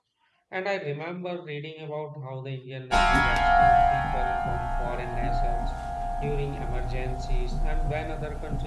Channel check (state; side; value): identical; both; correlation 1.00